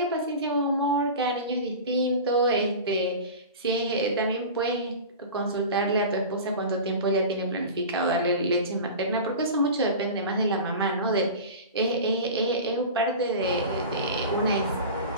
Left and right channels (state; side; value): inverted; both; correlation -0.32